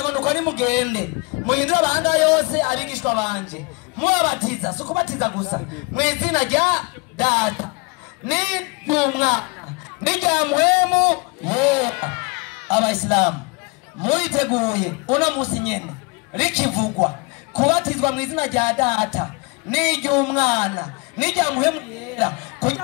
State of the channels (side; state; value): right; quieter; 28.9 dB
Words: ngo nuko nimugende muhindure amahanga yose abigishwa banje mubabatiza sukubatiza gusa mu izina rya Data n'Umwana n'irya Mpwemu Yera. Abayisilamu muriteguye uno musi nyene rikivugwa kubatizwa mu izina rya Data n'iry'Umwana n'irya Mpwemu Yera